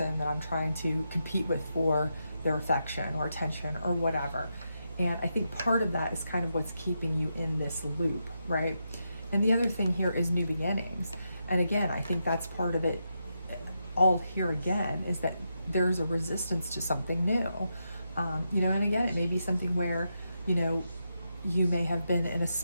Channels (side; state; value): both; inverted; correlation -0.84